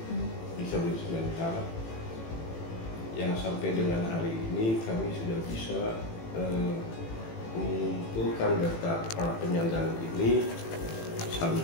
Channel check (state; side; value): late; right; 18 ms